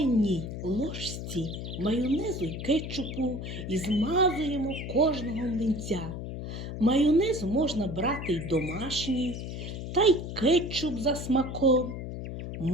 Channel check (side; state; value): left; noise; hum, 7 dB below the sound